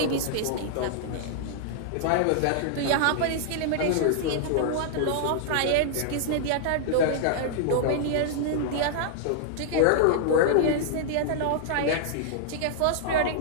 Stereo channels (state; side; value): different; both; correlation -0.01